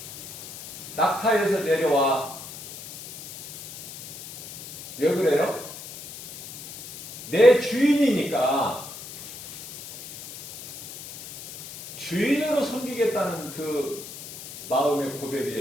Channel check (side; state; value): left; noise; hiss, 13 dB below the sound